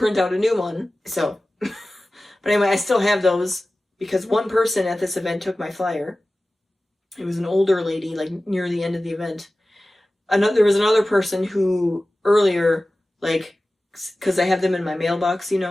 out a new one. So, but anyway, I still have those. because one person at this event took my flyer. It was an older lady, like near the end of the event. There was another person who earlier, like, because I have them in my mailbox, you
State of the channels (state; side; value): normal; both; correlation 0.96